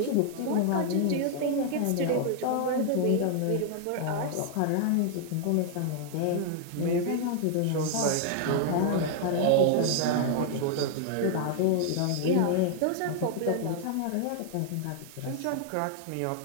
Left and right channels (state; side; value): different; both; correlation 0.00